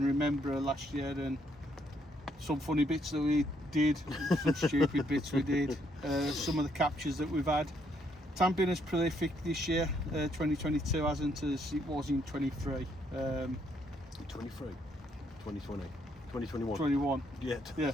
remember last year and some funny bits that we did, some stupid bits we did, some of the captures that we've had. It hasn't been as prolific this year, 2022 hasn't as it was in 23. 23, 2020, 2021. 21. Yeah, Yeah.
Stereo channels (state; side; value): normal; both; correlation 0.72